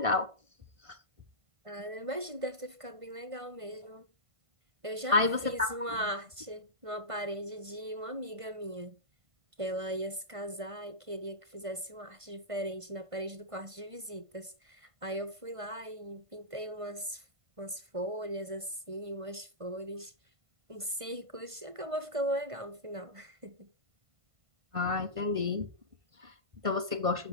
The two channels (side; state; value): left; late; 1.5 ms